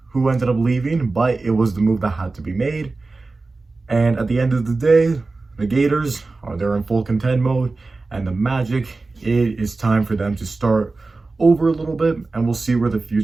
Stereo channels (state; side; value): quieter; left; 3.6 dB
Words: who ended up leaving, but it was the move that had to be made. And at the end of the day, the Gators they're in full contend mode, and the Magic, it is time for them to start over a little bit, and we'll see where the